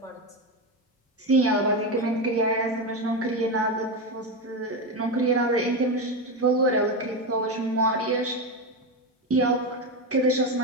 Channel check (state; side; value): normal; both; correlation 0.14